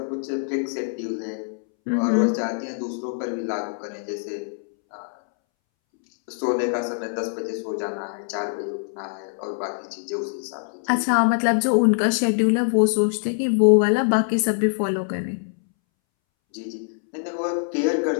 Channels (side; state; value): right; silent; 63 dB below the other